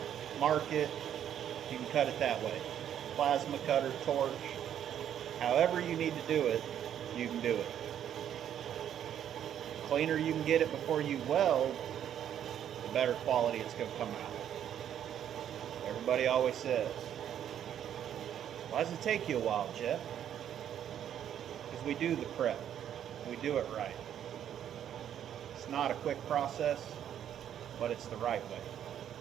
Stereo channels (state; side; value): quieter; left; 9.9 dB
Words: mark it, you can cut it that way. Plasma cutter, torch, however you need to do it, you can do it. The cleaner you can get it before you weld, the better quality it's going to come out. Everybody always says, why does it take you a while, Jeff? Because we do the prep. We do it right. It's not a quick process, but it's the right way.